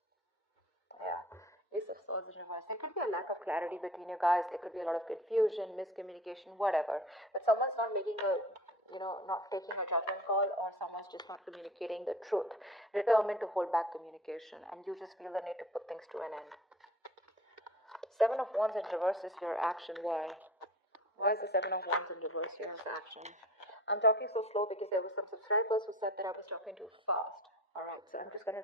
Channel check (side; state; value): both; normal; correlation 0.41